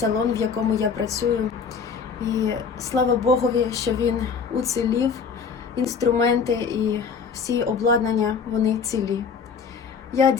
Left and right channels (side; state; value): right; quieter; 5.9 dB